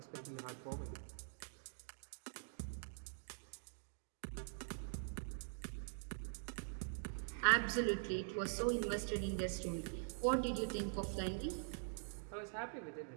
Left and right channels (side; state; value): left; silent; digital silence